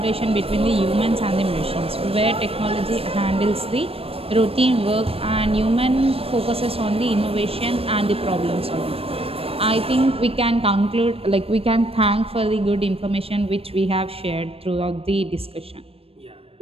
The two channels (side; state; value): left; late; 0.28 ms